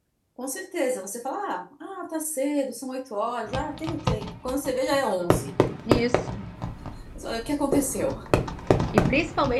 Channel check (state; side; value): identical; both; correlation 1.00